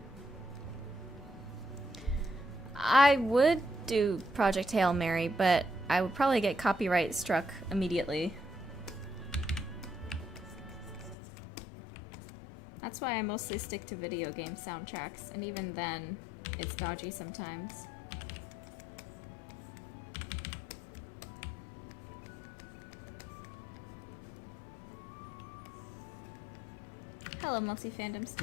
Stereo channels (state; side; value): drops out; right; at 11.2 s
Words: I would do Project Hail Mary, but I would probably get copyright struck immediately. That's why I mostly stick to video game soundtracks, and even then, it's dodgy sometimes. Hello, Multi-Fandom